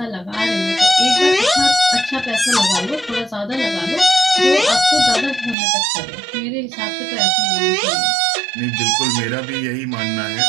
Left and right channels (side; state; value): left; drops out; at 5.6 s